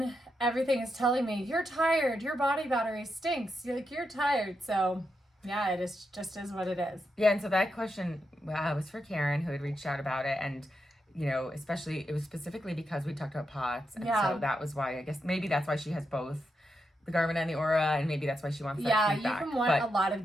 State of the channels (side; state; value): both; normal; correlation 0.85